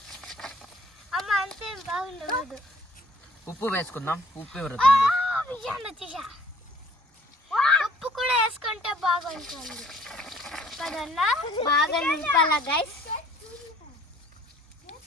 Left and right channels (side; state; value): both; normal; correlation 0.57